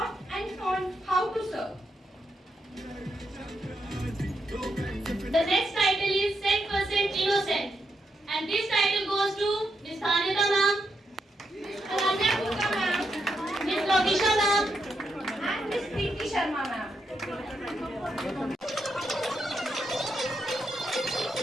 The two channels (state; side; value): normal; both; correlation 0.81